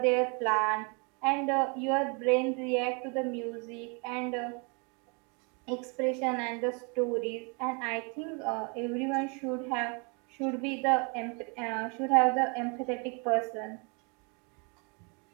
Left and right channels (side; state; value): left; quieter; 33.8 dB